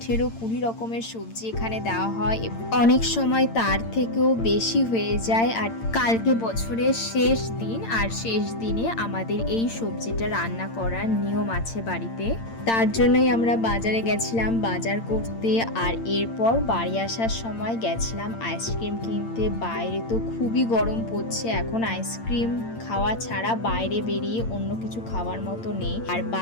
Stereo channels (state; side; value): late; right; 8.8 ms